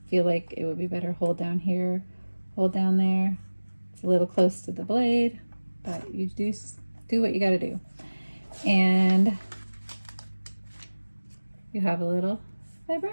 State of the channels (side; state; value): both; inverted; correlation -1.00